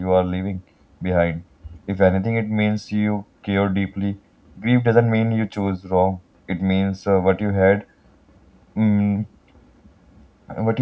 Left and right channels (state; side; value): identical; both; correlation 1.00